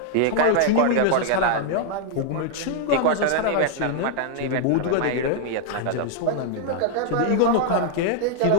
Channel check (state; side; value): different; both; correlation 0.00